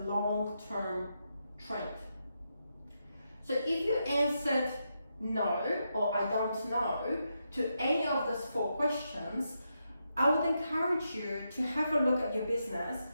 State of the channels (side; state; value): both; inverted; correlation -0.84